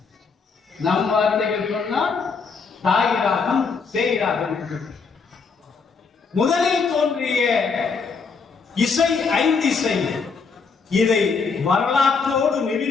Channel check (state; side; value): quieter; right; 5.1 dB